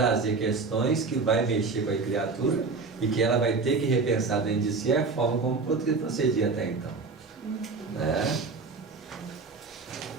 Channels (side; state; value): left; quieter; 4.3 dB